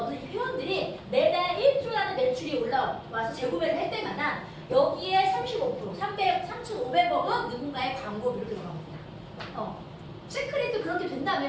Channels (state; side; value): identical; both; correlation 1.00